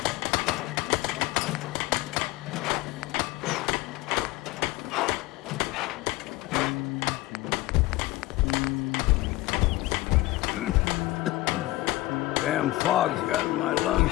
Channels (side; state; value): right; quieter; 19.0 dB